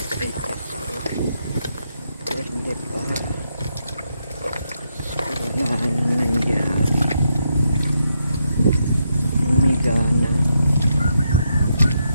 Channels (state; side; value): inverted; both; correlation -0.81